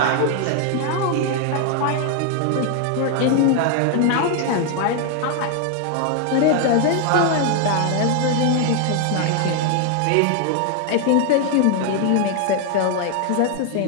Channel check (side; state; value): both; different; correlation 0.00